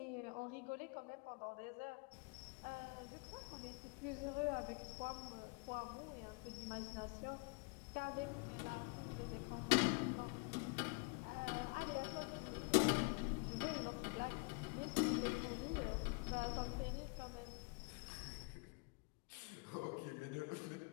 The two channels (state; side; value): quieter; right; 32.3 dB